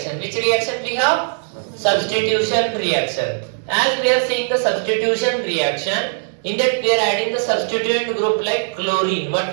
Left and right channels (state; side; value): silent; left; digital silence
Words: Which reaction we have? Substitution reaction. As we are seeing the substitution reaction, in that we are adding the substituent group like chlorine. What